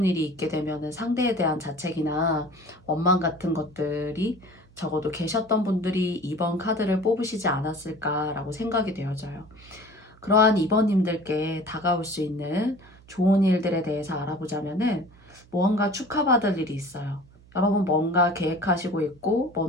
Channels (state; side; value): noise; right; hum, 26 dB below the sound